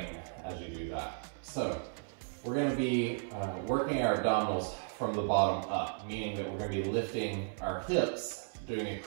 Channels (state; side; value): silent; left; 55 dB below the other